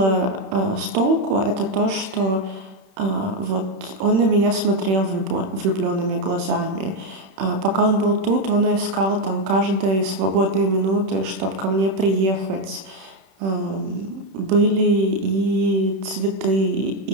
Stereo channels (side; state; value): left; late; 31 ms